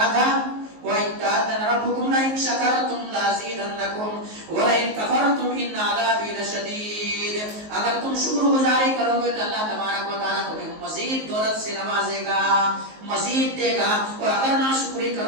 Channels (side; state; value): left; late; 19 ms